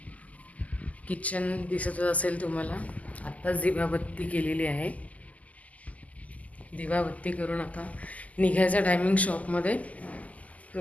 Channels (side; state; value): right; late; 0.074 ms